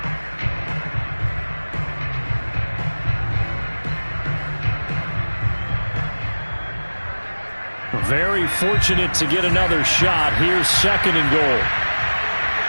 Very fortunate to get another shot. Here's 2nd and goal.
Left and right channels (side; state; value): both; inverted; correlation -1.00